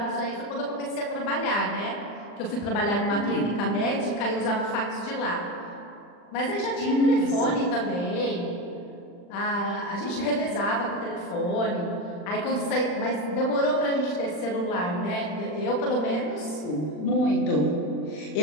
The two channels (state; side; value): late; right; 40 ms